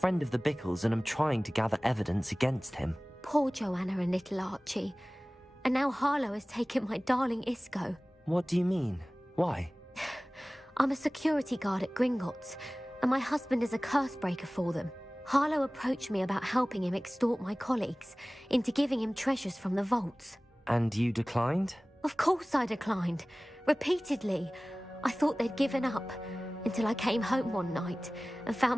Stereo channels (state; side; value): normal; both; correlation 0.98